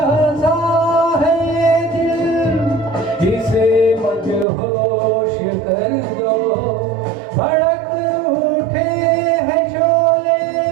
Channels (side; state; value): left; drops out; at 4.5 s